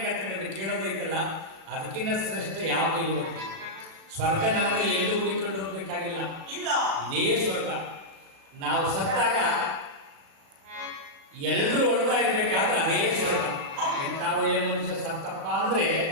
ಕೇಳೋದೈತಲ್ಲ, ಅದಕ್ಕಿಂತ ಶ್ರೇಷ್ಠ ಯಾವುದೂ ಇಲ್ಲ. ಸ್ವರ್ಗ ನರಕ ಎಲ್ಲೂ ಹುಡುಕೊಂಡು ಹೋಗ್ಬೇಕಾಗಿಲ್ಲ, ಇದೇ ಸ್ವರ್ಗ. ನಾವು ಸತ್ತಾಗ ಎಲ್ಲರೂ ಹೊಡ್ತಾ ಇರಬೇಕಾದ್ರೆ ಅದೇ ಸ್ವರ್ಗ. ಎಂಥ ಒಳ್ಳೆ ಮನುಷ್ಯ ಸತ್ತಪ್ಪ ಅಂದರೆ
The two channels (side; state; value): left; late; 36 ms